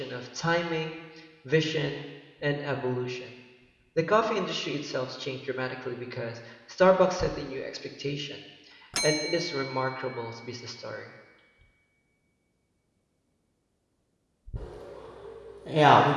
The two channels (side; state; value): both; identical; correlation 1.00